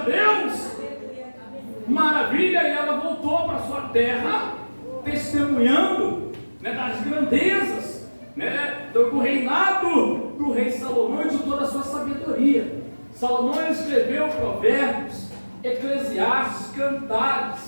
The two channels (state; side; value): inverted; both; correlation -1.00